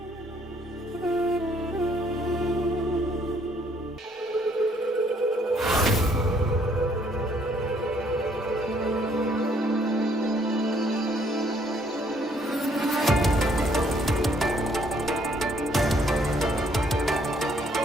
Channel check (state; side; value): normal; both; correlation 0.65